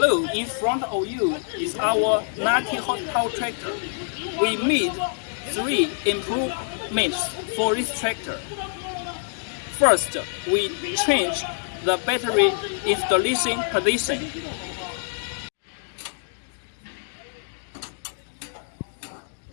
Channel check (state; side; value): silent; right; digital silence